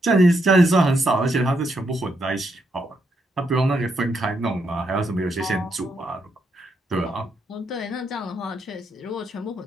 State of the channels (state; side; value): normal; both; correlation 0.78